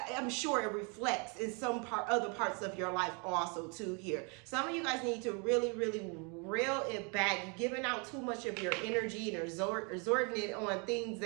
I'm sure it reflects in other parts of your life also too here. Some of you guys need to really reel it back. You're giving out too much of your energy and resorting it on things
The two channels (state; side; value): quieter; left; 34.0 dB